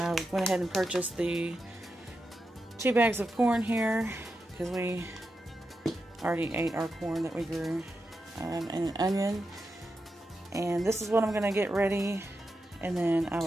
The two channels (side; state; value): both; normal; correlation 0.88